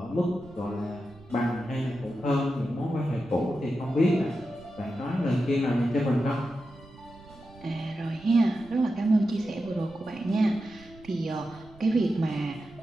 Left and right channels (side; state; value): right; noise; rumble, 22 dB below the sound